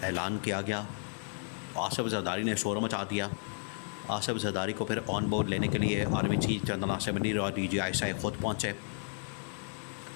ऐलान किया गया, आसिफ ज़रदारी ने शोर मचा दिया। आसिफ ज़रदारी को फिर ऑन बोर्ड लेने के लिए army chief general Nasir Munir और DGI ख़ुद पहुँचे।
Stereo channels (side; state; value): right; silent; 56 dB below the other